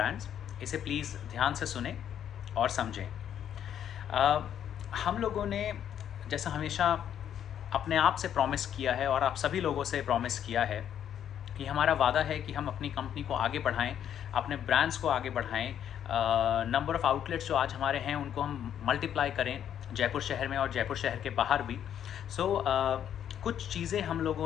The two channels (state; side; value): quieter; right; 9.7 dB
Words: इसे प्लीज़ ध्यान से सुने और समझें। अ, हम लोगों ने जैसा हमेशा अपने आप से प्रॉमिस किया है और आप सभी लोगों से प्रॉमिस किया है कि हमारा वादा है कि हम अपनी कंपनी को आगे बढ़ाएं, अपने ब्रांड्स को आगे बढ़ाएं। नंबर ऑफ़ आउटलेट्स जो आज हमारे हैं उनको हम मल्टीप्लाई करें जयपुर शहर में और जयपुर शहर के बाहर भी। कुछ चीज़ें हम